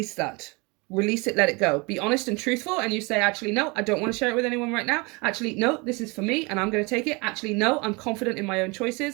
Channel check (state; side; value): quieter; left; 27.7 dB